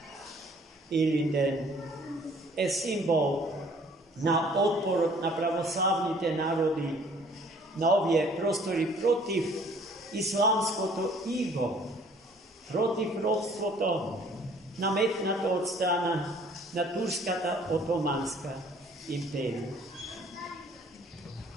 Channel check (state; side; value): normal; both; correlation 0.56